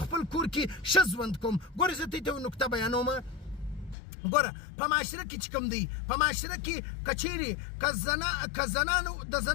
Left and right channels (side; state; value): right; drops out; at 4.0 s